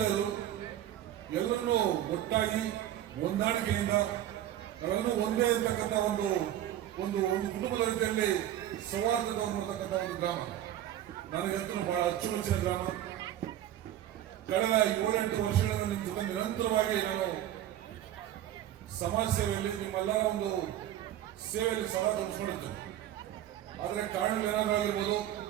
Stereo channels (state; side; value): quieter; left; 12.0 dB